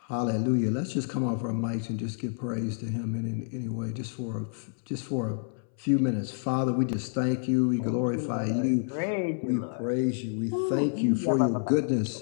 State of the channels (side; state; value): right; silent; 59 dB below the other